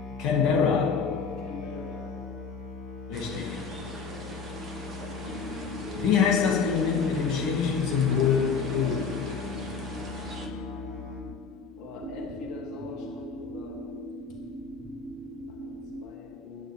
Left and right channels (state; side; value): quieter; right; 5.4 dB